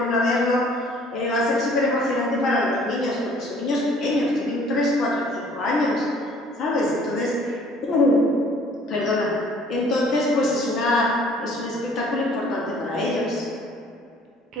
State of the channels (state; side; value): normal; both; correlation 0.56